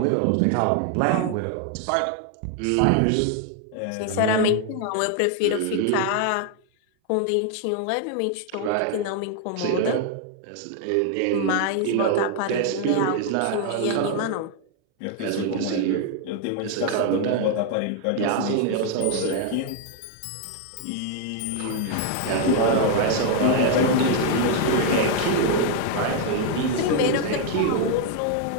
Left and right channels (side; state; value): both; different; correlation 0.00